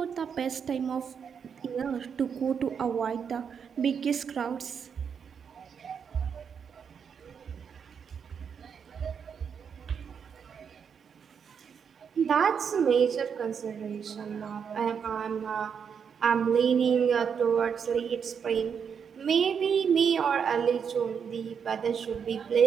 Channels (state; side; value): quieter; left; 6.9 dB